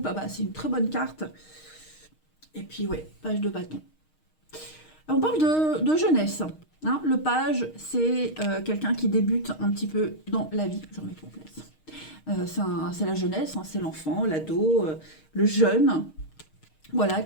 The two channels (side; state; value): right; late; 6.4 ms